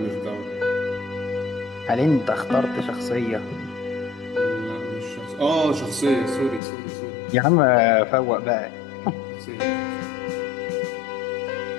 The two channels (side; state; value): right; drops out; at 6.6 s